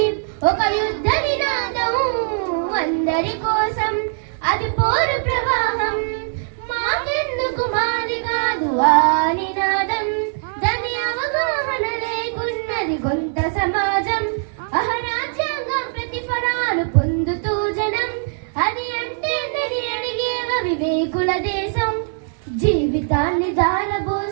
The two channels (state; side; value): silent; left; digital silence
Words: ఒక యుద్ధ నినాదం అందరి కోసం, అది పోరు ప్రవాహం. మాకెందుకు మాది కాదు ఆ నినాదం, దాని అవగాహన లేకున్నది కొంత సమాజం. అహరాజ్యాంగం ప్రతిఫలాలు పొందుతూ జనం, అది అంటే నని అడిగేవ వివేకుల దేశం. జీవితాన్ని